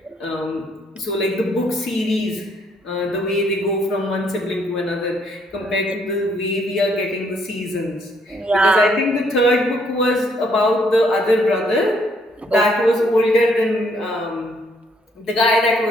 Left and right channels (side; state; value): both; normal; correlation 0.68